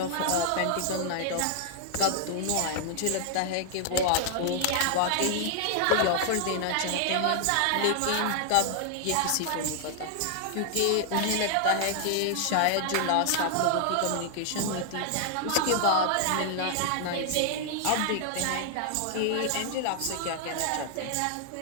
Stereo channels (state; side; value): different; both; correlation 0.00